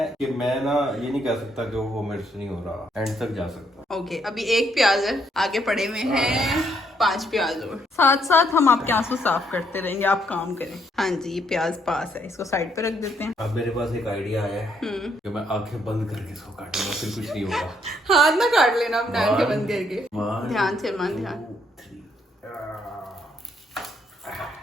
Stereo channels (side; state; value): both; normal; correlation 0.72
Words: कि मैं ना ये नहीं कह सकता कि वो मेरे से नहीं हो रहा, एंड तक जा सकता। ओके, अभी 1 प्याज है, आगे पड़े हुए हैं 5 प्याज और। साथ साथ हम आपके आंसू साफ करते रहेंगे, आप काम करें। हाँ जी, ये प्याज पास है, इसको साइड पे रख देते हैं। अब मेरे पास एक आइडिया आया है कि मैं आंखें बंद करके इसको काटूंगा, फिर कुछ नहीं होगा। हाथ ना काट लेना अपने, आंखें बंद करके। ध्यान से मन, ध्यान।